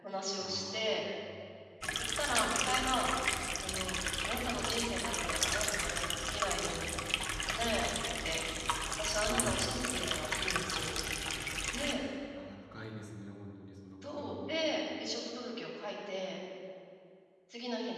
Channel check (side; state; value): both; identical; correlation 1.00